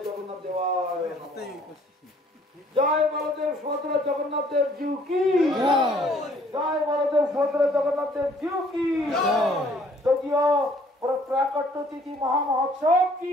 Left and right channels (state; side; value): normal; both; correlation 0.60